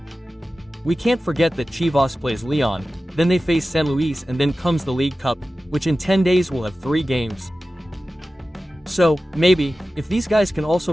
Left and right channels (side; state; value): both; normal; correlation 0.95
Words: We can't forget that Chivas plays Leon, then they face San Luis, and then comes the League Cup, which in 10 days will have 3 games. So, maybe, if these guys can